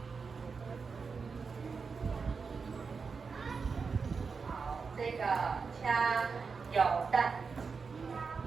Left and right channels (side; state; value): left; quieter; 5.1 dB